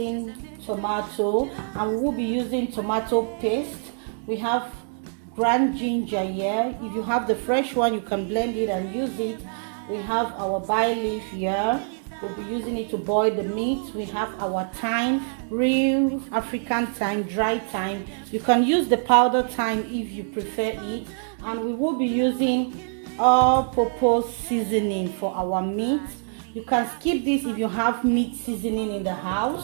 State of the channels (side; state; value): left; silent; digital silence